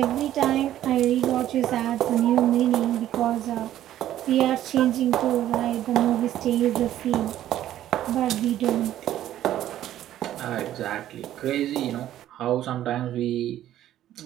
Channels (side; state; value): left; quieter; 12.5 dB